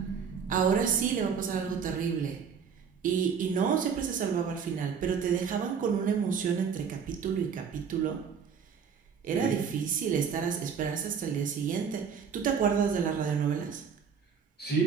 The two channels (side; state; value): left; quieter; 6.7 dB